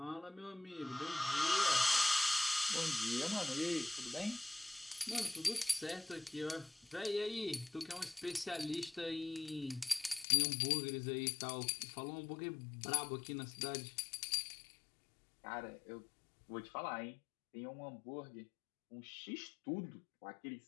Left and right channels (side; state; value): right; drops out; at 10.2 s